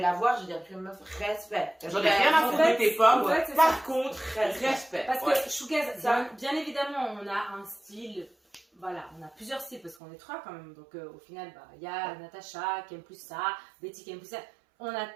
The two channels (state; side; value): drops out; left; at 10.0 s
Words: la voir, je vais dire, meuf, respect. J'en ai rien à foutre de tes pommes, par contre, respect. Parce que Shougaz, bien évidemment, on a un style, voilà, on a plusieurs styles, parce qu'on est 3 quand même. Donc au final, il y a Natacha qui aime plus ça, Betty qui aime plus ça. On a